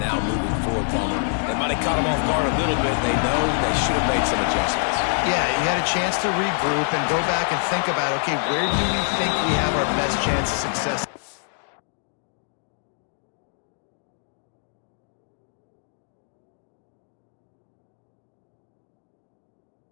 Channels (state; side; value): silent; right; 62 dB below the other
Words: now moving forward, Palmer. They might have caught them off guard a little bit. They know they should have made some adjustments. Yeah, you had a chance to regroup and go back and think about, okay, where do we think we have our best chance of success?